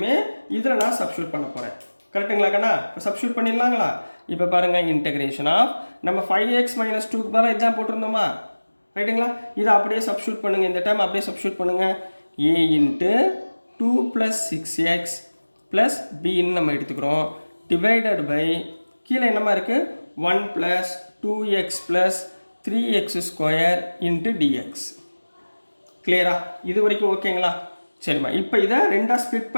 இதில் நான் சப்ஸ்டியூட் பண்ண போகிறேன். கரெக்டுங்களா கண்ணா? இப்போ சப்ஸ்டியூட் பண்ணிடலாங்களா? இப்போ பாருங்கள், இன்டெகிரேஷன் ஆஃப் நம்ம 5x மைனஸ் 2க்கு பதிலாக இதுதான் போட்டிருந்தோமா? ரைட்டுங்களா? இதை அப்படியே சப்ஸ்டியூட் பண்ணுங்கள். இந்த டைம் அப்படியே சப்ஸ்டியூட் பண்ணுங்கள். A into 2 plus 6x plus பின்னு நம்ம எடுத்துக்கிறோம். டிவைடட் பை கீழே என்னமா இருக்குது? 1 plus 2x plus 3x square into dx. கிளியரா? இது வரைக்கும் ஓகேங்களா? சரிம்மா. இப்போ இதை ரெண்டாக ஸ்ப்ளிட்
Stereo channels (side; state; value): both; inverted; correlation -1.00